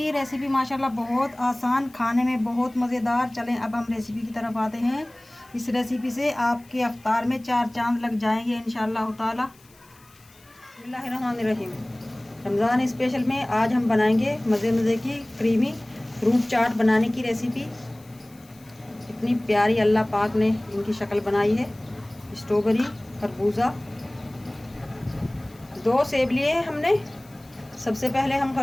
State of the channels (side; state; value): left; noise; hiss, 28 dB below the sound